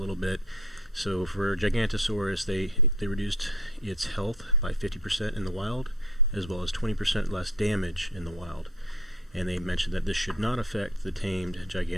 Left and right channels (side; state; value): both; normal; correlation 0.47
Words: bit. So for Gigantosaurus they reduced its health by 50% in the wild, as well as 20% less damage in the wild. And they mentioned that this should not affect the tamed